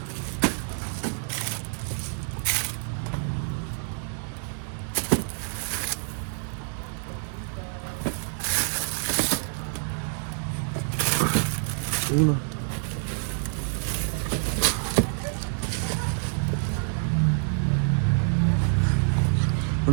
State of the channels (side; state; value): left; silent; 60 dB below the other